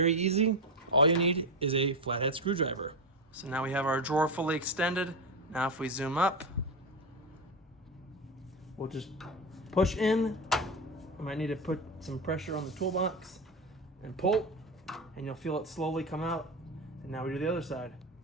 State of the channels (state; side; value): normal; both; correlation 0.16